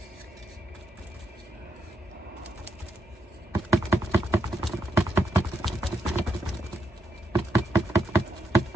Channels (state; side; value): normal; both; correlation 0.80